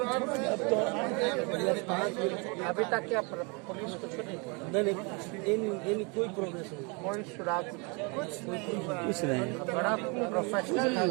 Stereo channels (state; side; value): quieter; left; 31.5 dB